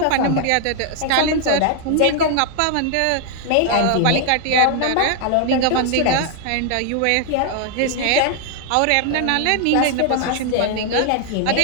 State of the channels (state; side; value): different; both; correlation 0.00